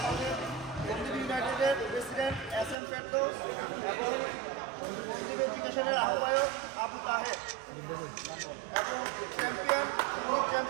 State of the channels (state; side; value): drops out; left; at 2.8 s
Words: ইউনাইটেডের প্রেসিডেন্ট SM ফেরদৌস এবং সন্দীপ এডুকেশনের আহ্বায়ক আবু তাহের এবং